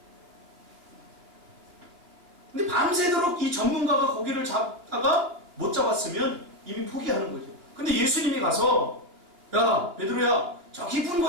근데 밤새도록 이 전문가가 고기를 잡다가 못 잡았으면 이미 포기하는 거죠. 근데 예수님이 가서 야 베드로야 저 깊은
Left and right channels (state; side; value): late; left; 2.8 ms